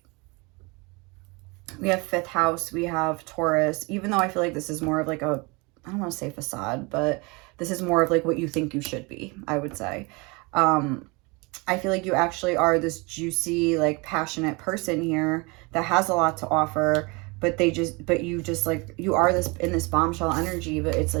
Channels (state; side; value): quieter; left; 27.9 dB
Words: we have fifth house, we have Taurus, even though I feel like this is more of like a, I don't want to say facade, but this is more of like what you think you should be, I would say. I feel like you actually are this juicy, like passionate person here that has a lot to offer, but you just like, you are this in this bombshell energy, but it's